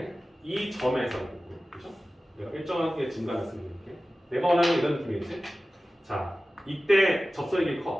이 점에서 그죠? 내가 일정하게 증가했으면 이렇게 내가 원하는 이런 느낌이겠지? 자, 이때 접선의 길이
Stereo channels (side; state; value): both; normal; correlation 0.96